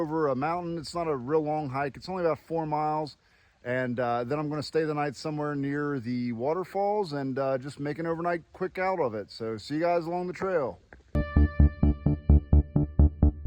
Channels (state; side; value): identical; both; correlation 1.00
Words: a mountain. It's not a real long hike. It's only about 4 miles. And then I'm going to stay the night somewhere near the waterfalls and just make an overnight quick out of it. So see you guys along the trail.